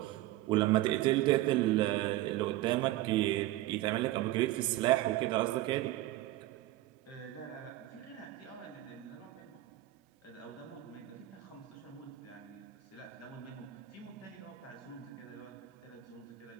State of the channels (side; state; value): left; quieter; 16.0 dB